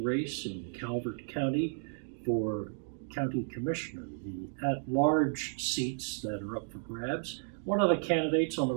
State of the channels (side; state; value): left; silent; 56 dB below the other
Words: race in Calvert County for county commissioner, the at-large seats that are up for grabs. One of the candidates on the